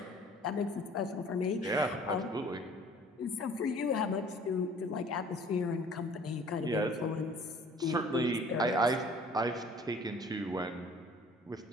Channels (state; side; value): normal; both; correlation 0.51